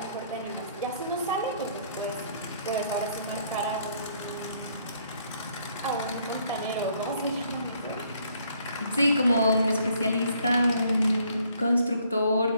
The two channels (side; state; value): both; inverted; correlation -0.66